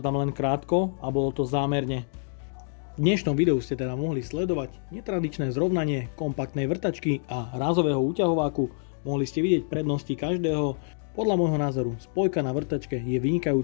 tam len krátko a bolo to zámerne. V dnešnom videu ste teda mohli sledovať netradičné zrovnanie kompaktnej vrtačky a rázového úťahováku. Mohli ste vidieť prednosti každého. Podľa môjho názoru spojka na vrtačke je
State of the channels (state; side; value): silent; right; 60 dB below the other